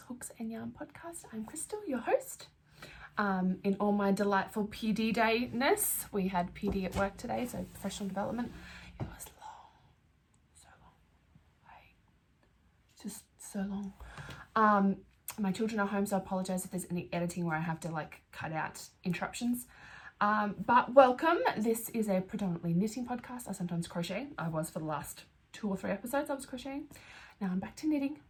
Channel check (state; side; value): identical; both; correlation 1.00